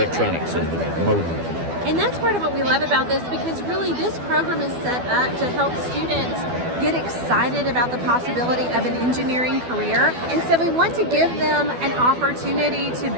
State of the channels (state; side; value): late; left; 12 ms